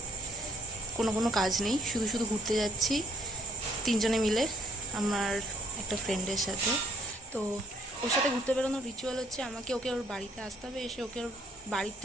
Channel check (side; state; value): both; normal; correlation 0.66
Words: কোনো কাজ নেই, শুধু ঘুরতে যাচ্ছি তিনজনে মিলে আমার একটা ফ্রেন্ডের সাথে। তো ওর সাথে ঘুরতে বেরোনোর রিচুয়াল হচ্ছে আমাকে ওকে ওর বাড়িতে আসতে হবে, এসে ওকে ওর বাড়ির